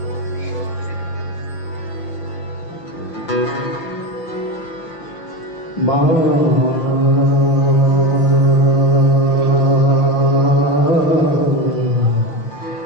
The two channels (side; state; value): right; late; 6.1 ms